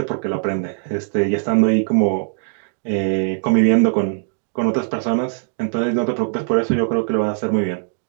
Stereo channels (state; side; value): silent; left; digital silence